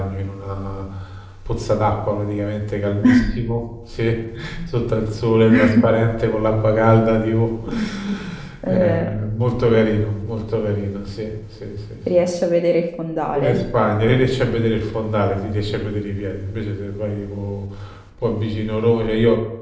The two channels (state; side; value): identical; both; correlation 1.00